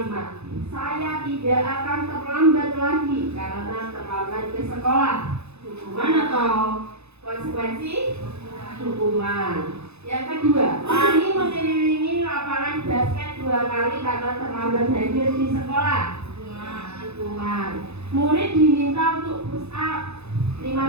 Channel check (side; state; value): left; late; 0.80 ms